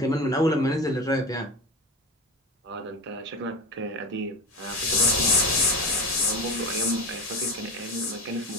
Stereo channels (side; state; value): both; normal; correlation 0.24